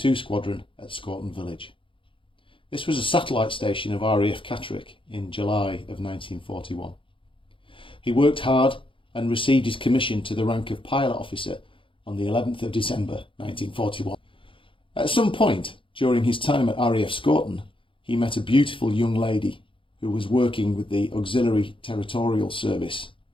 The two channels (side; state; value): right; late; 0.25 ms